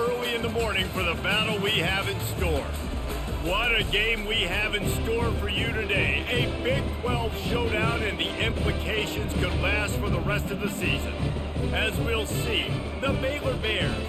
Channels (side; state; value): both; identical; correlation 1.00